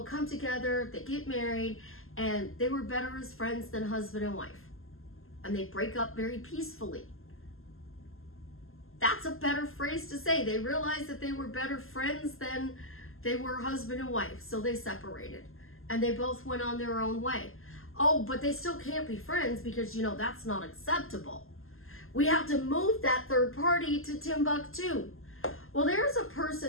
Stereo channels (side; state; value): right; late; 0.61 ms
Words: come together, they get married, and they were better as friends than husband and wife. And they break up very peacefully. That's a better phrase to say. They realized that they were better friends than they were husband and wife, so they separated. And they both went on their own way. Oh, but they still can't be friends because, that's not acceptable. We have to move that third party to Timbuktu. Well, there's a